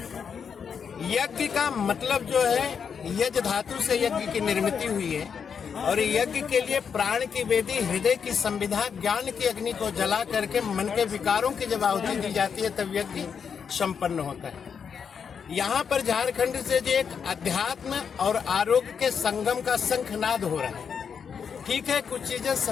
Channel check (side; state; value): right; quieter; 6.8 dB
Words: यज्ञ का मतलब जो है, यज्ञ धातु से यज्ञ की निर्मित हुई है और यज्ञ के लिए प्राण की वेदी, हृदय की संविधा, ज्ञान की अग्नि को जला करके मन के विकारों की जब आहुति दी जाती है तब यज्ञ संपन्न होता है। यहाँ पर झारखंड से जो एक अध्यात्म और आरोग्य के संगम का शंखनाद हो रहा है। ठीक है, कुछ चीजें